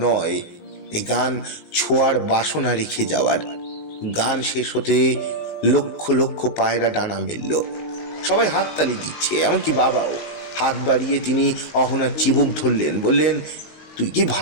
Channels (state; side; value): late; right; 19 ms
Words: নয়, এই গান ছোঁয়ার বাসনা রেখে যাওয়ার। গান শেষ হতে লক্ষ লক্ষ পায়রা ডানা মেলল। সবাই হাততালি দিচ্ছে, এমনকি বাবাও। হাত বাড়িয়ে তিনি অহনার চিবুক ধরলেন, বললেন, তুই কি